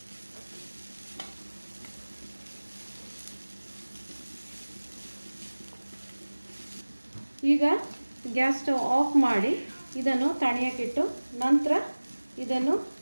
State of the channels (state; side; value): inverted; both; correlation -1.00